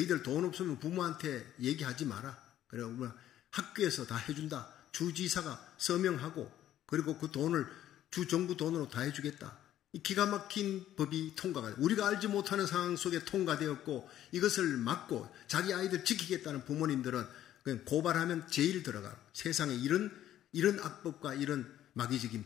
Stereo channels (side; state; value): right; quieter; 12.1 dB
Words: 돈 없으면 부모한테 얘기하지 마라. 그리고 학교에서 다 해준다. 주지사가 서명하고 그리고 그 돈을 주정부 돈으로 다 해주겠다. 이 기가 막힌 법이 통과가 돼요. 우리가 알지 못하는 상황 속에 통과되었고 이것을 막고 자기 아이들 지키겠다는 부모님들은 그냥 고발하면 제일 들어가. 세상에 이런 악법과 이런 마귀적인